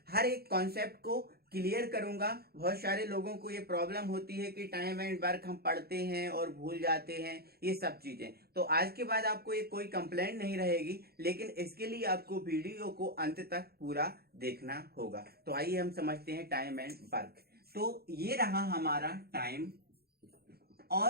हर एक कॉन्सेप्ट को क्लियर करूंगा। बहुत सारे लोगों को ये प्रॉब्लम होती है कि टाइम एंड वर्क हम पढ़ते हैं और भूल जाते हैं, ये सब चीजें। तो आज के बाद आपको ये कोई कंप्लेंट नहीं रहेगी, लेकिन इसके लिए आपको वीडियो को अंत तक पूरा देखना होगा। तो आइए हम समझते हैं टाइम एंड वर्क। तो ये रहा हमारा टाइम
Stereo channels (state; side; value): late; left; 0.46 ms